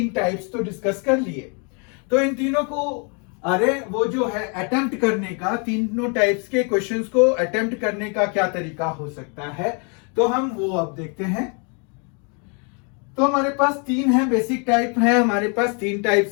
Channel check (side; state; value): right; quieter; 36.6 dB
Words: टाइप्स तो डिस्कस कर लिए, तो इन तीनों को वो जो है अटेम्प्ट करने का, तीनों टाइप्स के क्वेश्चंस को अटेम्प्ट करने का क्या तरीका हो सकता है, तो हम वो अब देखते हैं। तो हमारे पास 3 है, बेसिक टाइप है, हमारे पास 3